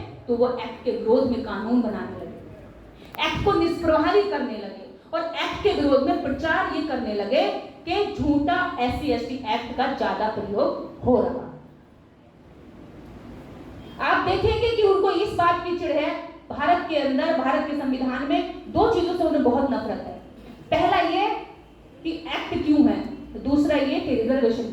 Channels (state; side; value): identical; both; correlation 1.00